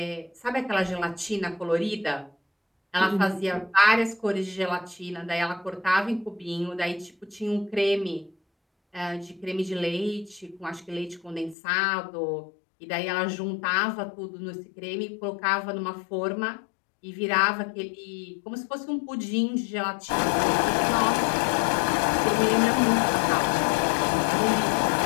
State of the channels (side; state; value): right; drops out; at 11.6 s